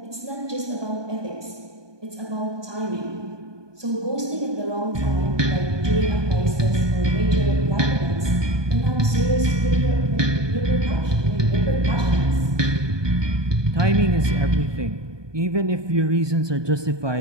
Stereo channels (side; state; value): left; late; 1.2 ms